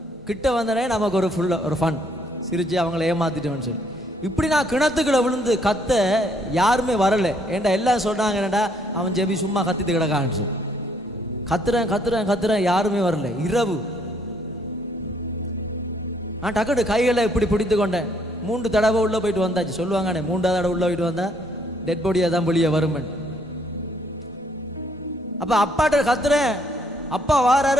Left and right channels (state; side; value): normal; both; correlation 0.68